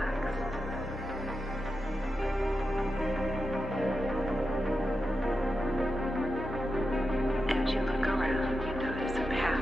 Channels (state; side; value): normal; both; correlation 0.89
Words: As you look around, you notice a